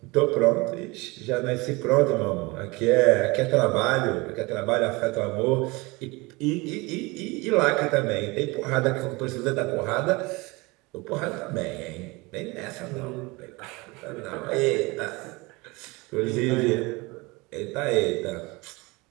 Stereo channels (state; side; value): quieter; left; 24.6 dB